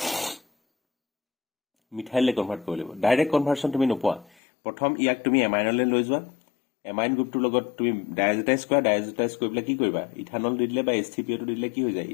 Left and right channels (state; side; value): drops out; right; at 4.3 s